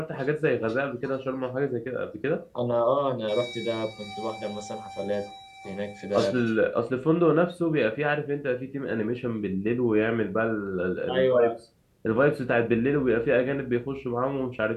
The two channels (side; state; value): both; identical; correlation 1.00